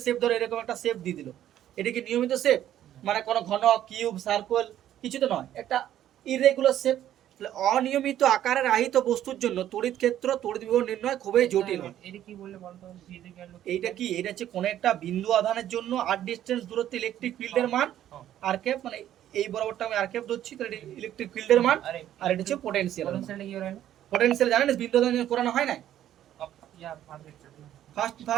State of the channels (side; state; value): left; quieter; 11.7 dB